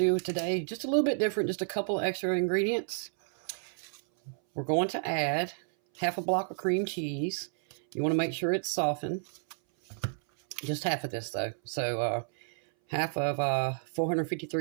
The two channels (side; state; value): left; silent; 57 dB below the other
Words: today just a little bit different, just a couple extra ingredients. We're going to add half a block of cream cheese. You want to make sure it's softened. Just half of this, though. So half of